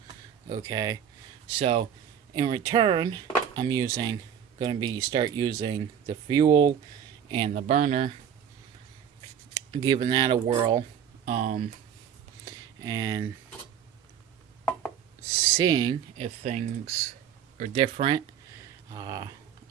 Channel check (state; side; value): quieter; left; 8.7 dB